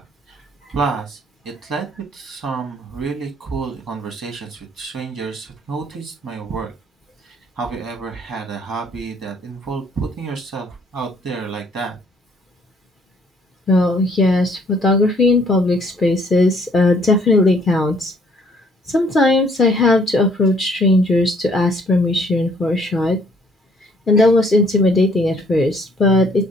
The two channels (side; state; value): both; normal; correlation 0.63